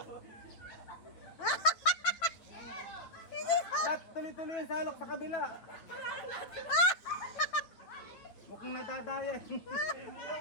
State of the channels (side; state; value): right; late; 9.3 ms